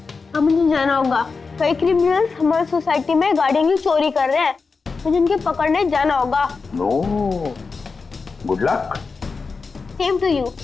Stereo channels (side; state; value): right; quieter; 4.6 dB